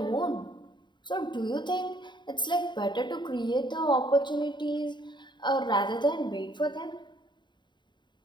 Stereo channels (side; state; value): right; late; 0.22 ms